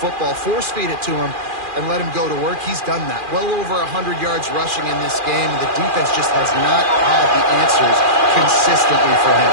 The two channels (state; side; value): late; left; 2.4 ms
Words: force feed it to him, and let him go to work. He's done that. Well over 100 yards rushing in this game, and the defense just has not had the answers consistently for him.